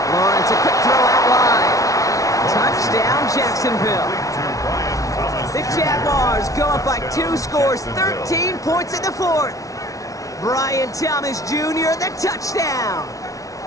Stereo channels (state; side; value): late; right; 0.17 ms